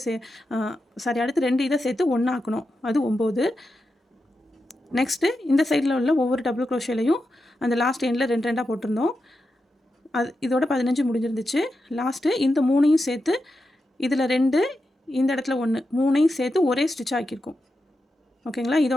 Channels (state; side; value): normal; both; correlation 0.88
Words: அடுத்து 2 இதை சேர்த்து 1 ஆக்கணும், அது 9. நெக்ஸ்ட்டு இந்த சைடில் உள்ள ஒவ்வொரு டபுள் க்ரோஷேலையும் அந்த லாஸ்ட் எண்டில் 2 2 போட்டிருந்தோம். அது இதோட 15 முடிஞ்சிருந்துச்சு. லாஸ்ட்டு இந்த 3ஐயும் சேர்த்து இதில் 2, இந்த இடத்துல 1, 3ஐயும் சேர்த்து ஒரே ஸ்டிச் ஆக்கியிருக்கோம். ஓகேங்களா?